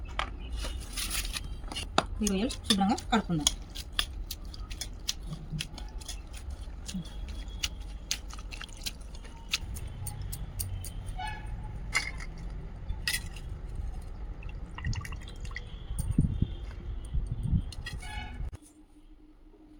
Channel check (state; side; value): identical; both; correlation 1.00